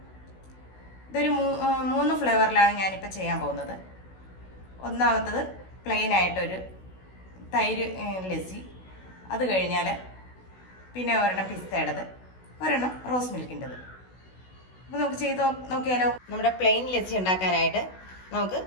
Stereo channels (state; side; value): late; right; 16 ms